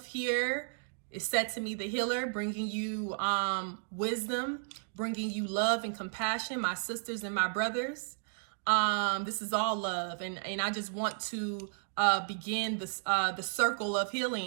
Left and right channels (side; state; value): left; silent; digital silence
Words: here is Setimi the healer, bringing you wisdom, bringing you love and compassion, my sisters and my brothers. This is all love. And I just want to begin the circle of